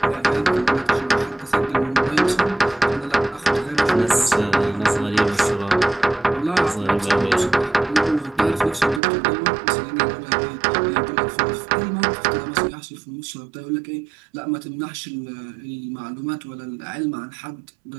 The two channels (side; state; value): left; drops out; at 9.0 s